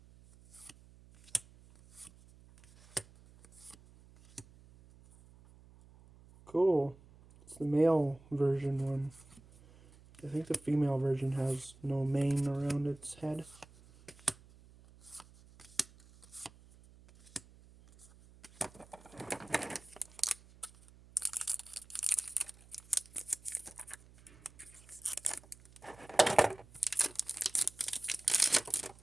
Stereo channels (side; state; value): right; noise; hum, 24 dB below the sound